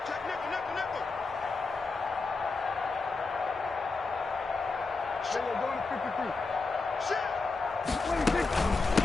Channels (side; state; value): right; quieter; 4.0 dB